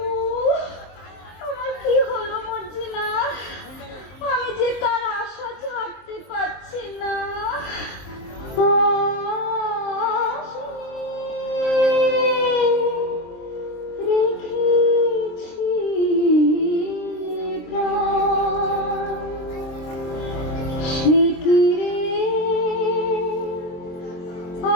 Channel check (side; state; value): right; late; 23 ms